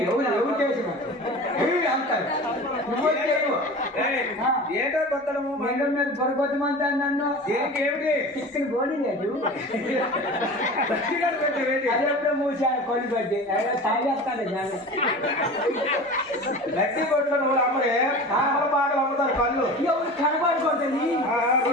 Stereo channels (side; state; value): both; normal; correlation 0.35